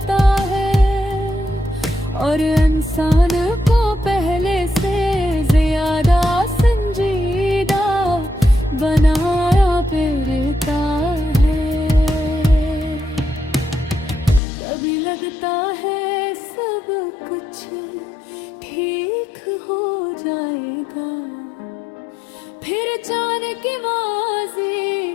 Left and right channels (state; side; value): drops out; right; at 14.4 s